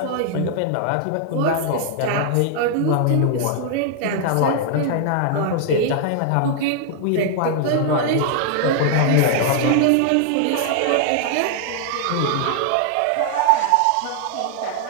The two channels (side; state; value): both; different; correlation 0.00